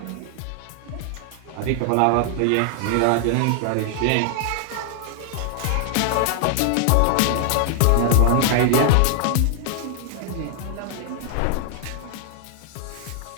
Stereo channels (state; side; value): different; both; correlation 0.00